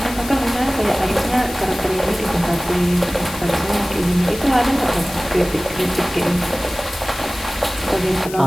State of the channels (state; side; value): noise; left; hiss, 13 dB below the sound